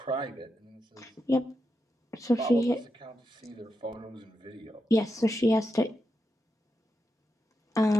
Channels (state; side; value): normal; both; correlation 0.87